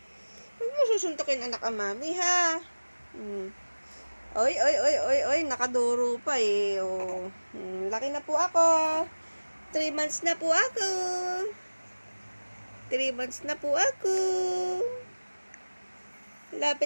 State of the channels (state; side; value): inverted; both; correlation -1.00